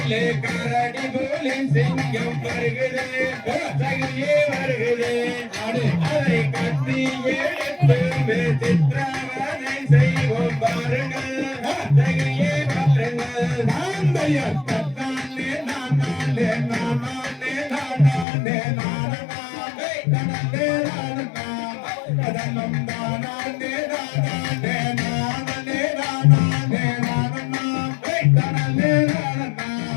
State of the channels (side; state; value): right; drops out; at 18.2 s